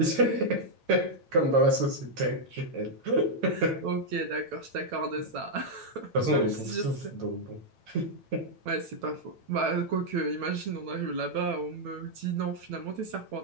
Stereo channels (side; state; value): left; late; 8.9 ms